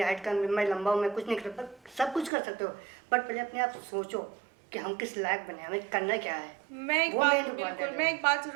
हाइट कम है, मैं लंबा हूँ, मैं कुछ नहीं कर सकता। सब कुछ कर सकते हो, बट पहले अपने आप सोचो कि हम किस लायक बने, हमें करना क्या है। वो main important है। मैं एक बात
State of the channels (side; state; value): left; drops out; at 2.3 s